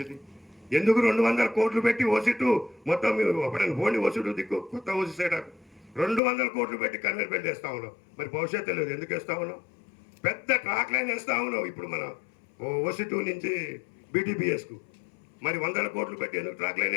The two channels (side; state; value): right; drops out; at 6.2 s